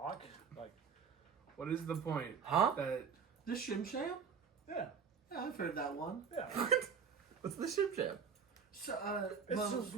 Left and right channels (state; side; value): quieter; left; 6.3 dB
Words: Like, What is the point? Huh? That The Shim Sham? yeah. Yeah, I've heard that one. Yeah. What's the ship jam? So, It's well, a